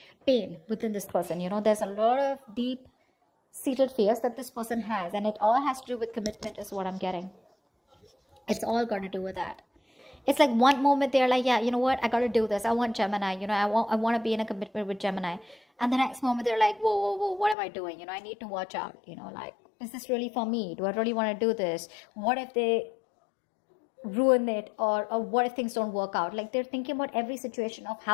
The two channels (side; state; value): right; drops out; at 17.6 s